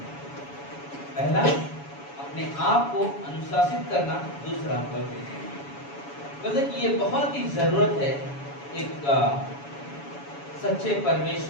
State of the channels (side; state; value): right; late; 7.1 ms